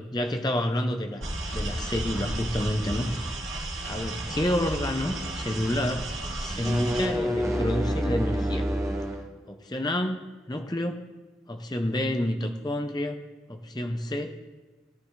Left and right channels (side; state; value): both; normal; correlation 0.83